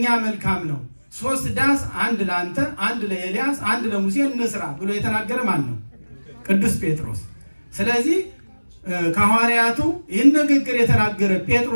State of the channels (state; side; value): inverted; both; correlation -1.00